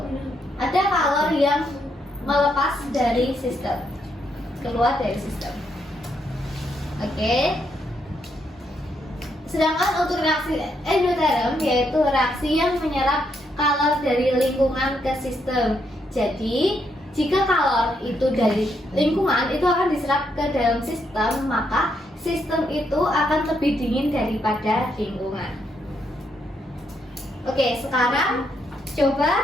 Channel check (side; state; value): both; normal; correlation 0.77